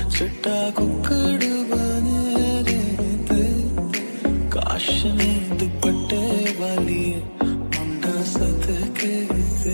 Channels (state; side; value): inverted; both; correlation -1.00